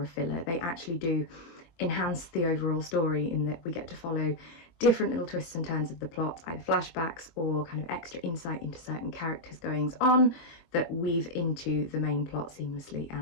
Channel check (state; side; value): late; right; 23 ms